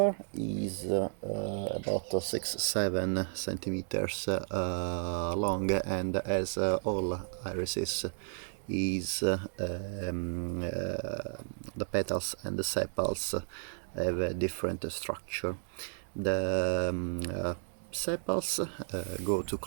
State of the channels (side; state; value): left; silent; digital silence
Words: is about 6-7 centimeters long, and as all irises is the petals and the sepals have a different structure. The sepals go to